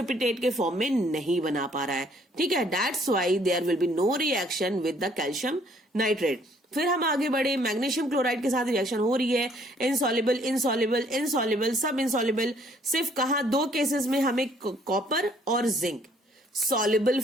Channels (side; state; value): both; normal; correlation 0.63